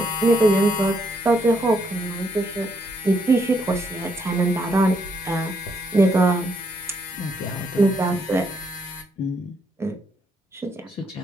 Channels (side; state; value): both; normal; correlation 0.74